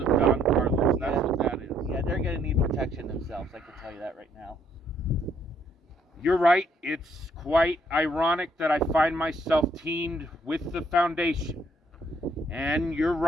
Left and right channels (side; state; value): both; normal; correlation 0.68